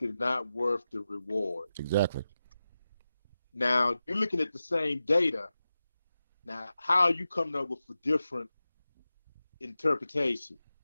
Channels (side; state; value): both; inverted; correlation -0.93